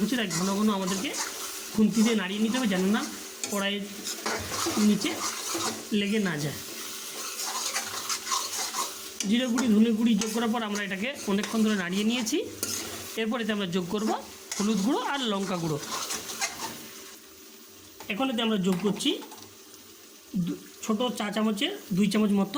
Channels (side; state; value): both; identical; correlation 1.00